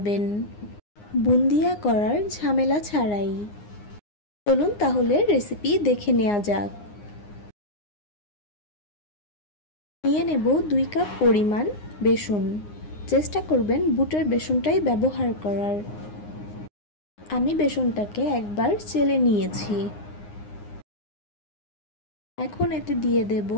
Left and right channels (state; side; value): late; right; 9.7 ms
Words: বুন্দিয়া করার ঝামেলা ছাড়াই। চলুন তাহলে রেসিপি দেখে নেওয়া যাক। নিয়ে নেব 2 কাপ পরিমাণ বেসন। চেষ্টা করবেন বুটের বেসনটাই ব্যবহার করার। আমি বেসনটাকে একবার চেলে নিয়েছি। এখন এতে দিয়ে দেব